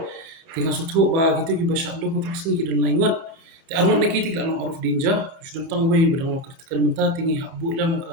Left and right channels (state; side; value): late; left; 30 ms